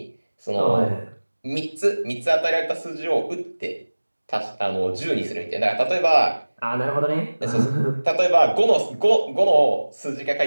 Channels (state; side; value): inverted; both; correlation -1.00